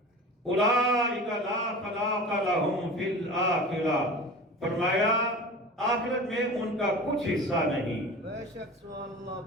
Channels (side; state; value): both; normal; correlation 0.35